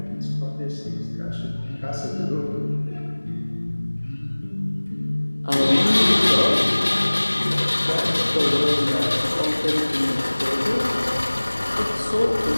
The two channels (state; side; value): inverted; both; correlation -1.00